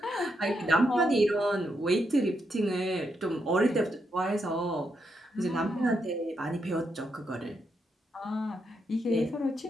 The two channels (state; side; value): normal; both; correlation 0.81